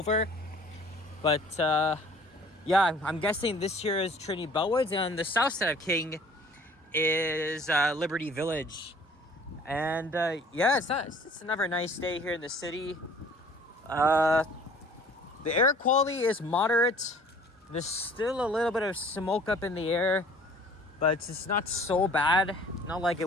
But, yeah, I'm guessing this here is Trinity Bellwoods, and on the south side of King is Liberty Village. And, yeah, it's another nice day here in the city. The air quality is moderate. There's still a little bit of smoke up in the air, but it's not so bad. Not like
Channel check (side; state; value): both; normal; correlation 0.51